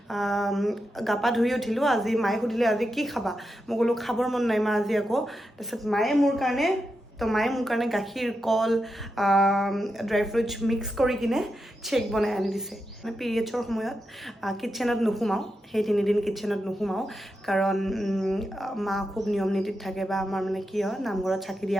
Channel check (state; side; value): normal; both; correlation 0.87